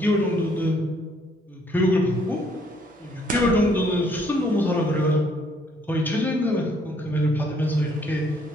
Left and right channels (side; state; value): both; normal; correlation 0.66